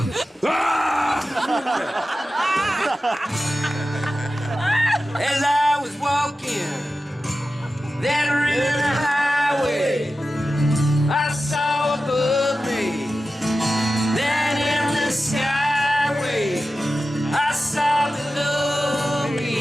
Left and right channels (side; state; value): both; normal; correlation 0.93